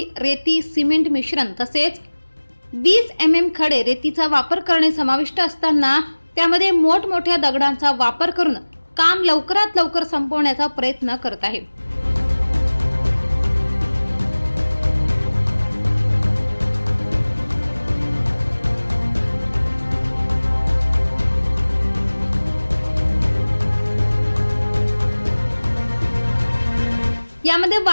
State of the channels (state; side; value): inverted; both; correlation -1.00